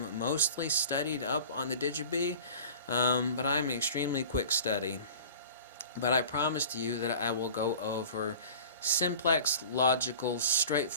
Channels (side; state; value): both; inverted; correlation -0.41